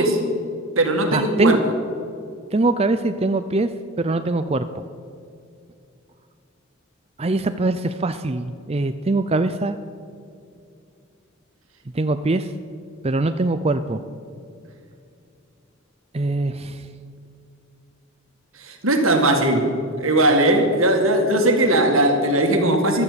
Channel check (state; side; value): normal; both; correlation 0.25